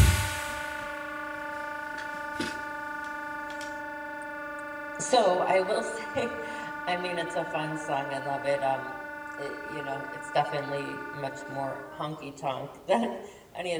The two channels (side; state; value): both; identical; correlation 1.00